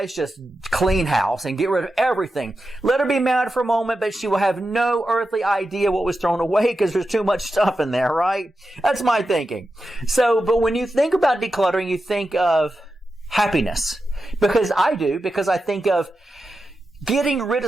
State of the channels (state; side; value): normal; both; correlation 0.90